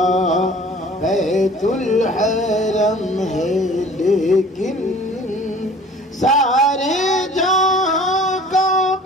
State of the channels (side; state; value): both; normal; correlation 0.48